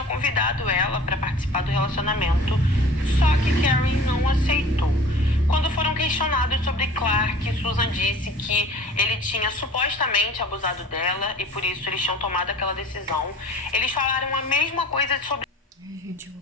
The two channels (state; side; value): normal; both; correlation 0.44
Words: convidado ela para participar do relacionamento. Só que Karen não aceitou. Quando foram questionados sobre Clark, Susan disse que ele tinha supostamente abusado dela e por isso eles tinham tomado aquela decisão. Eles falaram a mesma coisa sobre... Gente, eu vou